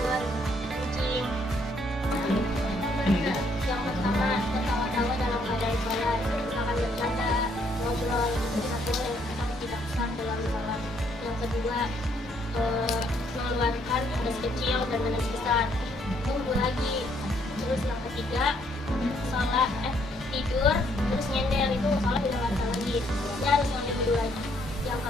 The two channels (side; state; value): both; normal; correlation 0.69